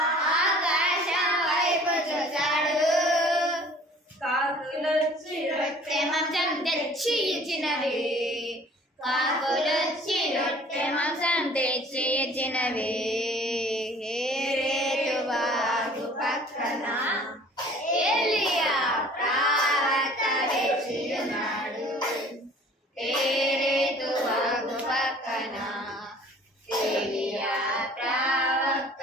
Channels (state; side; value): normal; both; correlation 0.51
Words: ఆకాశం వైపు చూశాడు. కాకులొచ్చి రొట్టె మాంసం తెచ్చి ఇచ్చినవి, కాకులొచ్చి రొట్టె మాంసం తెచ్చి ఇచ్చినవి. కేరేతు వాగు పక్కన ఏలియా ప్రవక్త వేచియున్నాడు. కేరేతు వాగు పక్కన ఏలియా ప్రవక్త